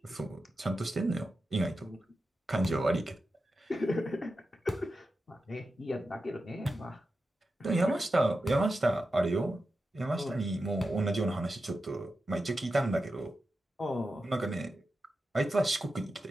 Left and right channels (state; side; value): normal; both; correlation 0.91